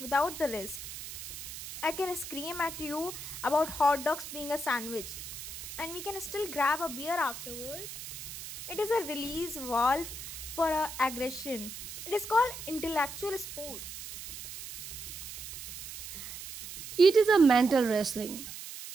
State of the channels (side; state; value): right; noise; hiss, 10 dB below the sound